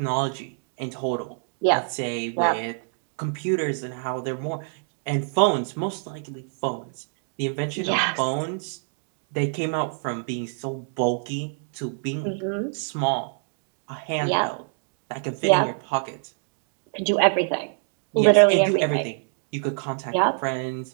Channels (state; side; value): silent; left; 59 dB below the other